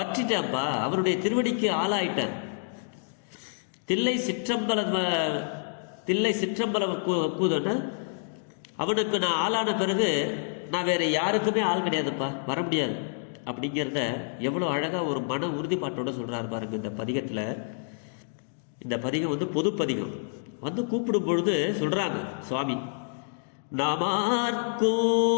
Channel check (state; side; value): silent; right; digital silence